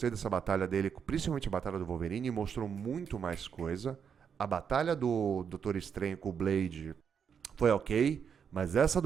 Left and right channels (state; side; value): quieter; left; 7.2 dB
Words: dessa batalha dele, principalmente a batalha do Wolverine, mostrou muito mais coisa. A batalha do Doutor Estranho com o Blade foi ok, mas essa